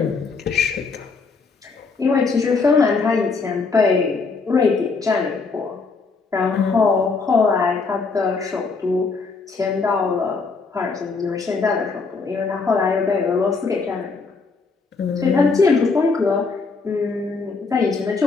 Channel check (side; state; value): right; quieter; 4.4 dB